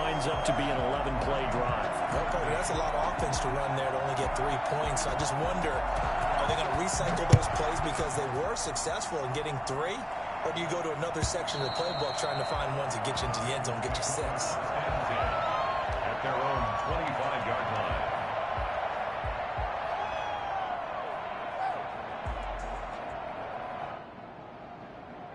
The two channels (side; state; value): both; identical; correlation 1.00